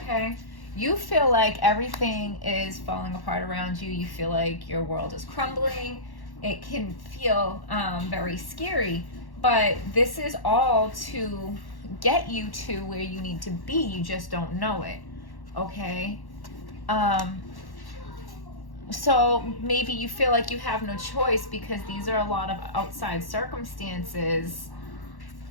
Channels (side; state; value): right; late; 1.1 ms